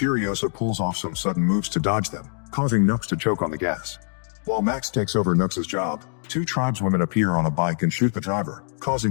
pulls off some sudden moves to dodge them, causing Nux to choke on the gas. While Max takes over Nux's job, two tribeswomen appear on a bike and shoot the driver,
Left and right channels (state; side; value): silent; right; digital silence